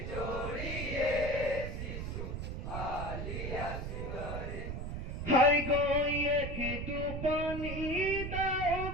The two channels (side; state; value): right; noise; rumble, 4 dB below the sound